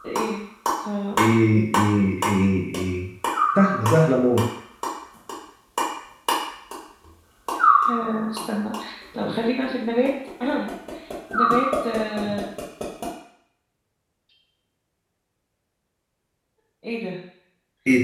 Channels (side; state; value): both; identical; correlation 1.00